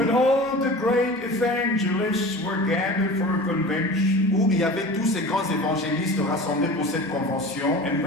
all the great evangelists were gathered for a convention. où il y avait tous ces grands évangélistes rassemblés pour cette convention. And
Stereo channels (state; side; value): normal; both; correlation 0.37